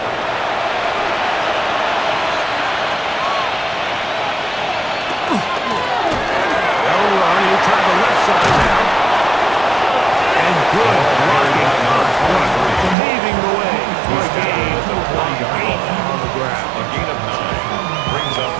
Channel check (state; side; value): drops out; left; at 13.0 s